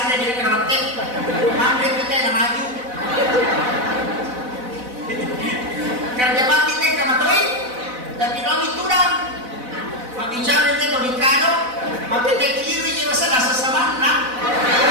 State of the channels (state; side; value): late; left; 4.0 ms